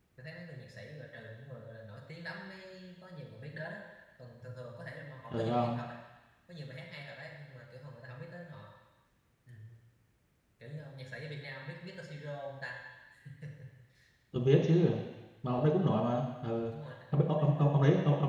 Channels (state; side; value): identical; both; correlation 1.00